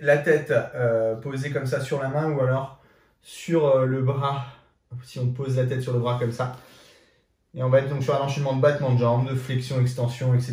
la tête posée comme ça sur la main ou alors sur le bras, si on pose la tête sur le bras comme ça. Et on va être donc sur un enchaînement de battements de jambes, de flexion, extension,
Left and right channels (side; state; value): both; identical; correlation 1.00